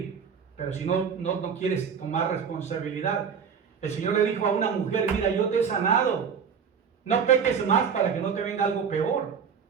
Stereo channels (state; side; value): quieter; left; 6.7 dB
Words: Pero si no quieres tomar responsabilidad, el Señor le dijo a una mujer, mira, yo te he sanado. No peques más para que no te venga algo peor.